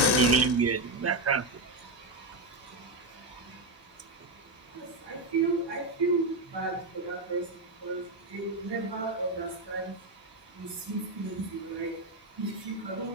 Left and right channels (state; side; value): normal; both; correlation 0.09